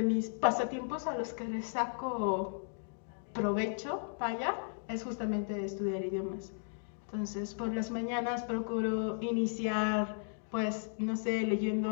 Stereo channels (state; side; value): silent; right; digital silence